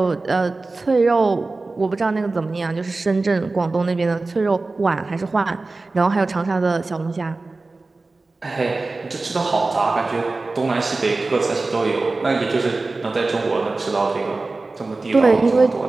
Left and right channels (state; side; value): quieter; left; 3.5 dB